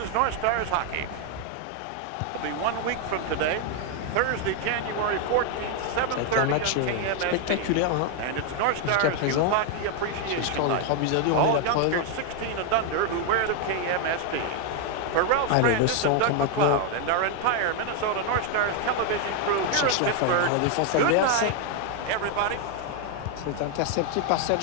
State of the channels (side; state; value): both; different; correlation 0.00